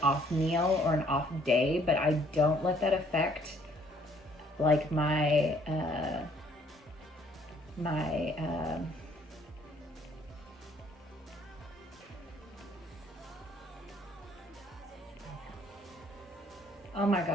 off meal or an off day, but I don't let that affect like my oh my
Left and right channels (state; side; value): normal; both; correlation 0.62